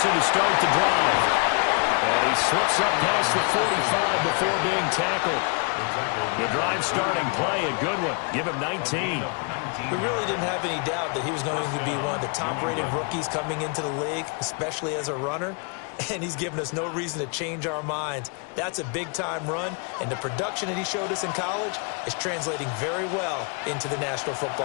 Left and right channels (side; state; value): right; quieter; 36.4 dB